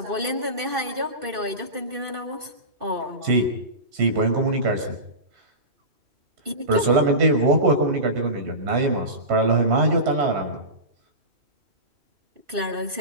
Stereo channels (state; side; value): late; left; 2.5 ms